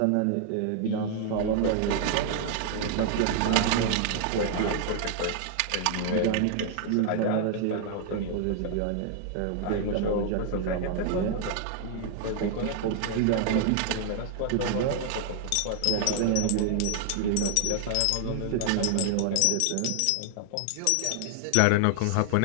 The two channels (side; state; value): both; different; correlation -0.01